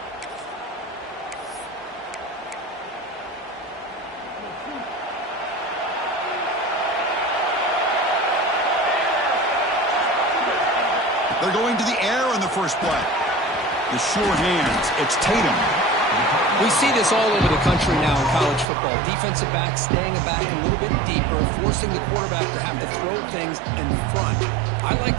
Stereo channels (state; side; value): drops out; left; at 18.7 s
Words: They're going to the air in the first play. The sure hands. It's Tatum. We see this all over the country now in college football. Defensive backs staying back a little bit deeper, forcing the quarterback to have to throw things in front. I